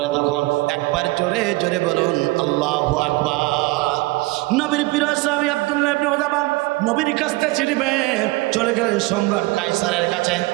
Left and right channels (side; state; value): left; quieter; 22.0 dB